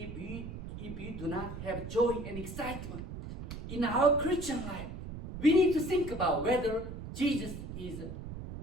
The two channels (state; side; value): noise; right; rumble, 9 dB below the sound